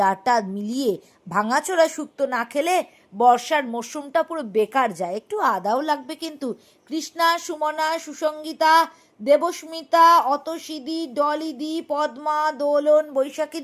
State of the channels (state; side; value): identical; both; correlation 1.00